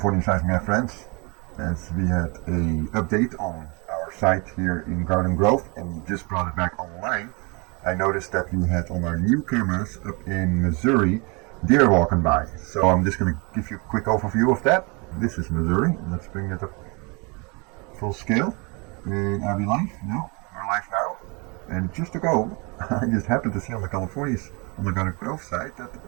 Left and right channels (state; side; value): quieter; left; 30.1 dB